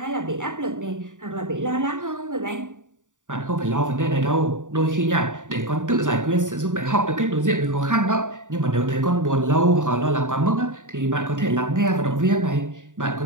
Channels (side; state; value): left; late; 0.87 ms